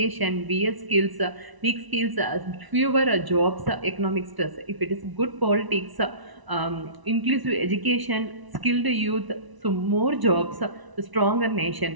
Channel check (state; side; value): late; left; 1.0 ms